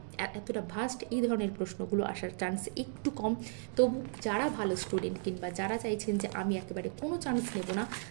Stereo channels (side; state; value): left; silent; 54 dB below the other